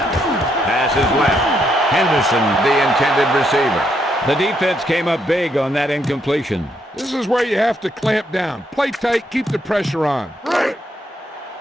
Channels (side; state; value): both; normal; correlation 0.75